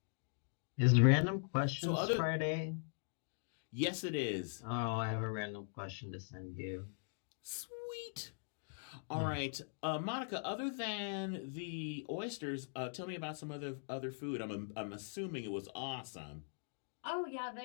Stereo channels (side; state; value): right; silent; digital silence